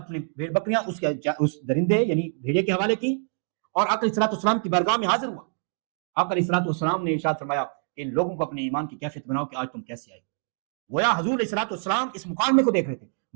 بھیڑ بکریاں اس درندے یعنی بھیڑیے کے حوالے کی، اور آقا علیہ الصلوۃ والسلام کی بارگاہ میں حاضر ہوا. آقا علیہ الصلوۃ والسلام نے ارشاد فرمایا کہ ان لوگوں کو اپنے ایمان کی کیفیت بناؤ کہ آج تم کیسے آئے. گویا حضور علیہ الصلوۃ والسلام اس مقام کو دیکھ رہے تھے.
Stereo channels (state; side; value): silent; left; 61 dB below the other